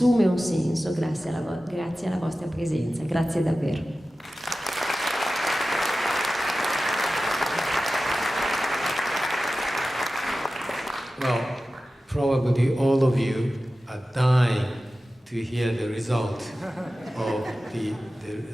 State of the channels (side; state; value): both; normal; correlation 0.95